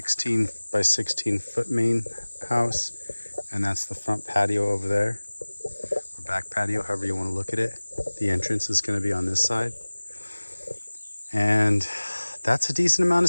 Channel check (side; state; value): both; inverted; correlation -1.00